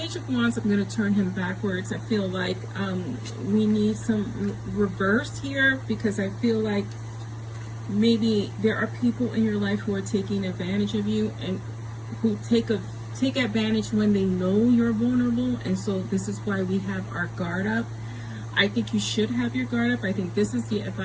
of Wands, I'm going to turn him backwards. I feel like we need some reverse here, because I feel like maybe there are people in your life who are taking advantage of you and who take advantage when they know you're vulnerable, and so this is why we have our guard up. I think you should have your guard up. I think this is the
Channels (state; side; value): identical; both; correlation 1.00